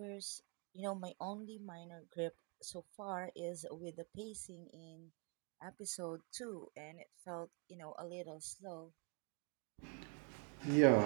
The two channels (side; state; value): left; quieter; 39.5 dB